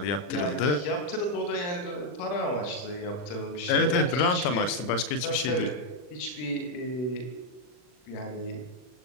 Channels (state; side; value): late; right; 40 ms